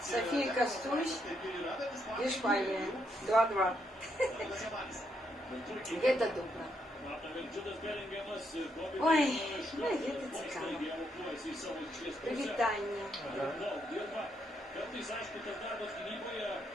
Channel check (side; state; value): both; normal; correlation 0.77